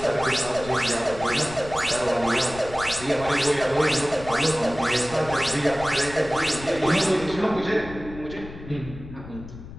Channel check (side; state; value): left; noise; rumble, 14 dB below the sound